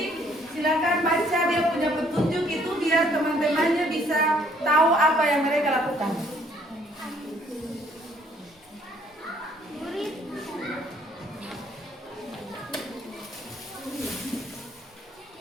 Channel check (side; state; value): both; normal; correlation 0.63